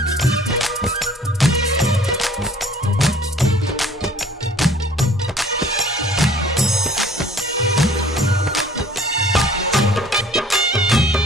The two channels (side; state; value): both; normal; correlation 0.52